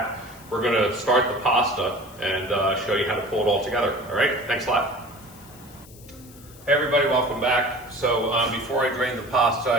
we're going to start the pasta and show you how to pull it all together. All right, thanks a lot. Hey everybody, welcome back. So before I drained the pasta,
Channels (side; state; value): left; noise; hiss, 22 dB below the sound